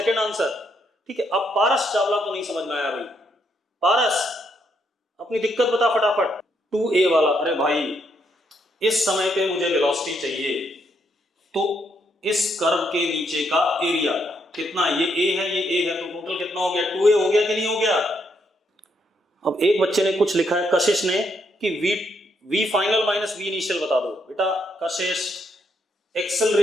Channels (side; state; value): both; normal; correlation 0.76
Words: answer. ठीक है, अब पारस चावला को नहीं समझ में आया भाई। पारस अपनी दिक्कत बता फटाफट। 2a वाला, अरे भाई इस समय पे मुझे वेलोसिटी चाहिए, तो इस कर्व के नीचे का एरिया कितना, ये a है ये a है, तो टोटल कितना हो गया 2a हो गया कि नहीं हो गया? अब एक बच्चे ने कुछ लिखा है, कशिश ने, कि v final minus v initial बता दो। बेटा Kashish,